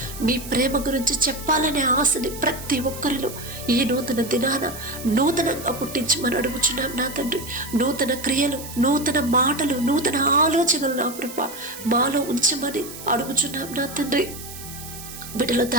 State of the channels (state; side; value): noise; right; hiss, 13 dB below the sound